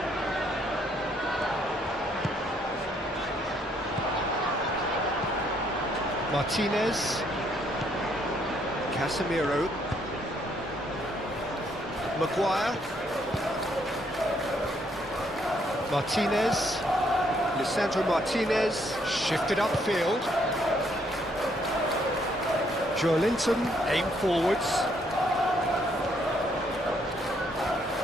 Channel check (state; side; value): normal; both; correlation 0.70